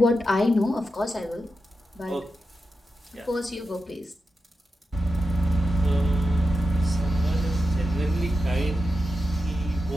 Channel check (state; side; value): normal; both; correlation 0.89